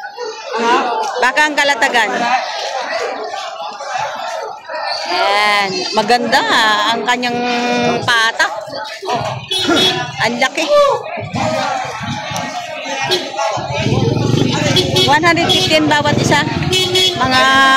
Baka ang Kalatagan. Ayan. Maganda ang kanyang patak. Ang laki. 115 bawat isa. Mga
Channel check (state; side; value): identical; both; correlation 1.00